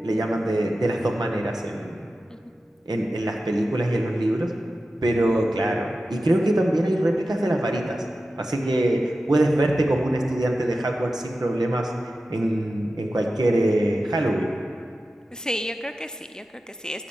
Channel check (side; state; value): both; normal; correlation 0.93